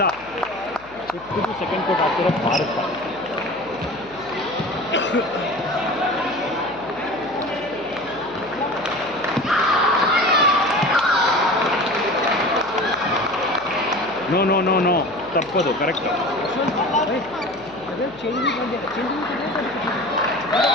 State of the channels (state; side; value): noise; left; hum, 24 dB below the sound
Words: 5th to 2nd ಕೋಟ್ ಆಗ್ತಿರೋ ಭಾರತ. ನೋ ನೋ ನೋ ನೋ, ತಪ್ಪದು, ಕರೆಕ್ಟ್.